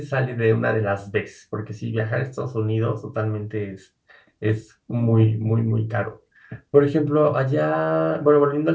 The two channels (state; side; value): identical; both; correlation 1.00